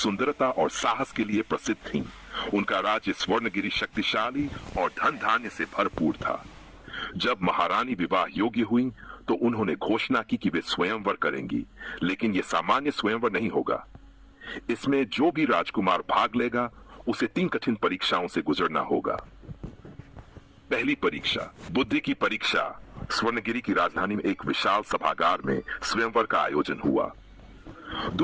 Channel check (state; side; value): identical; both; correlation 1.00